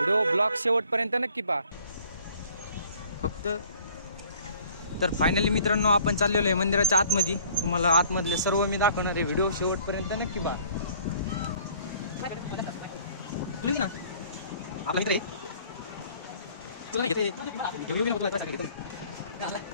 ब्लॉग शेवटपर्यंत नक्की पहा फक्त। तर फायनली मित्रांनो आपण चाललेलो आहे मंदिराच्या आतमध्ये। तुम्हाला आतमधले सर्व मी दाखवणार आहे, व्हिडिओ शेवटपर्यंत नक्की पहा। ना आपला मित्र तुला घेते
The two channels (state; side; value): inverted; both; correlation -0.55